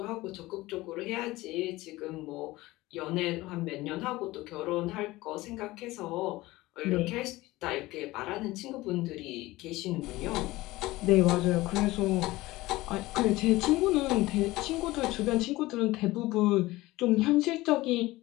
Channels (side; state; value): right; quieter; 18.9 dB